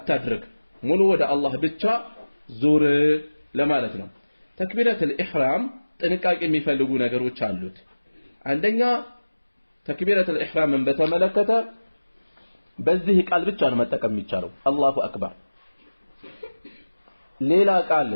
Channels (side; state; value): both; inverted; correlation -1.00